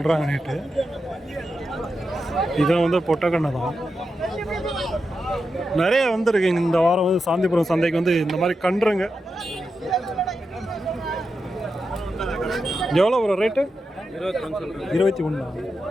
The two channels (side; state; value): both; normal; correlation 0.88